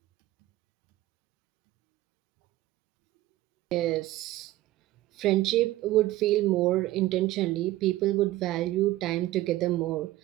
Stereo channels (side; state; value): left; quieter; 16.4 dB